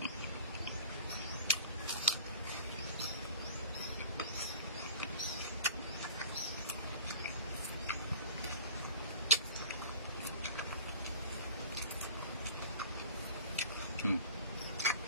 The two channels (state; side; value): inverted; both; correlation -0.42